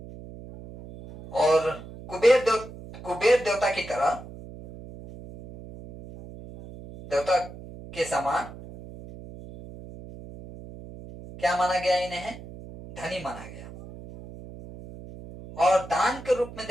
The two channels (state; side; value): noise; right; hum, 15 dB below the sound